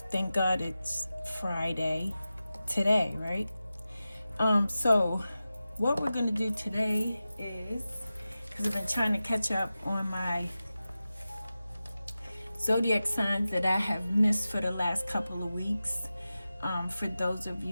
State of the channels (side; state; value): both; inverted; correlation -0.94